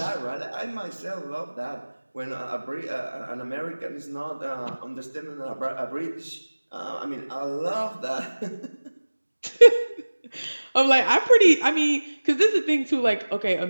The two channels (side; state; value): both; inverted; correlation -1.00